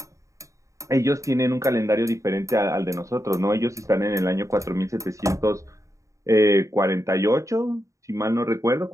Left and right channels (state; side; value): late; left; 0.15 ms